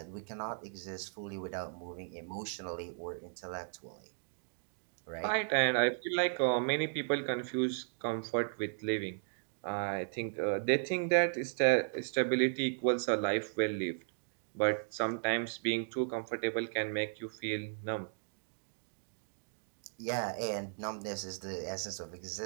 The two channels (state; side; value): silent; left; digital silence